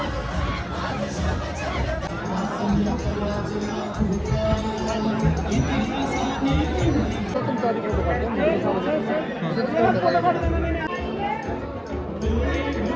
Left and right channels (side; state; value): both; identical; correlation 1.00